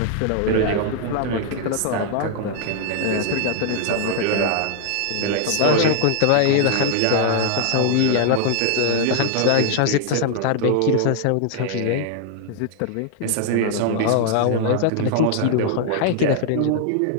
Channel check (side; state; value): both; different; correlation 0.00